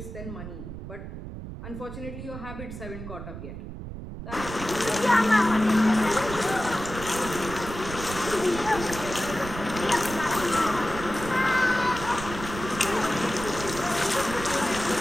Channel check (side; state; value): right; noise; rumble, 10 dB below the sound